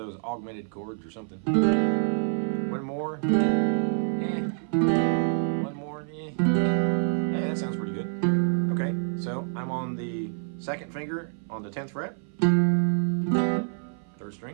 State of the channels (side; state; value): left; silent; 56 dB below the other